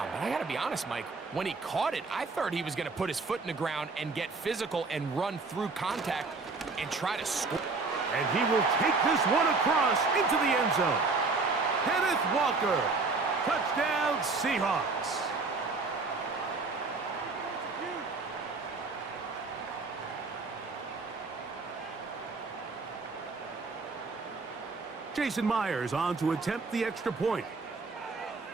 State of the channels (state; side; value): quieter; left; 4.0 dB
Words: But I got to be honest, Mike, when he caught it, I thought he was going to put his foot in the ground and get physical and run through contact and try to score. And he will take this one across into the end zone. Kenneth Walker, touchdown Seahawks. Jason Myers on to attempt the extra point.